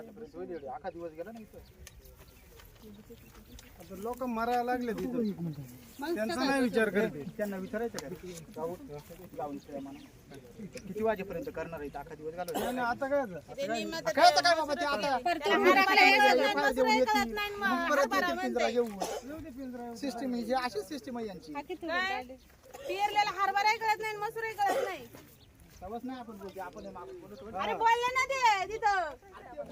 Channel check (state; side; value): identical; both; correlation 1.00